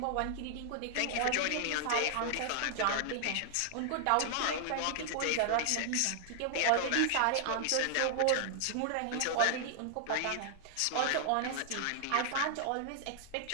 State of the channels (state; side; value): different; both; correlation 0.00